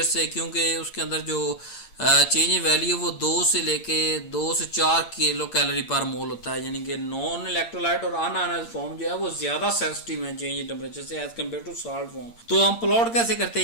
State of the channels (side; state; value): right; late; 8.7 ms